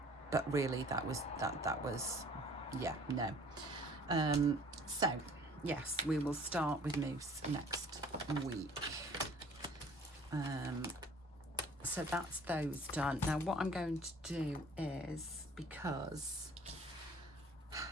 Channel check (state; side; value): normal; both; correlation 0.51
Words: but really that was yeah, no. So yes, we will start with moose next week. So that's those done. Now what I'm going to do is, because